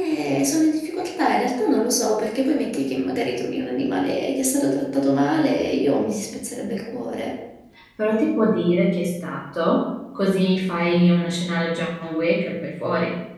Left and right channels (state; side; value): identical; both; correlation 1.00